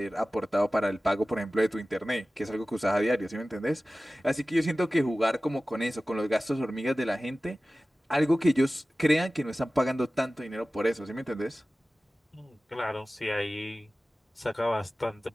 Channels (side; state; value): both; normal; correlation 0.96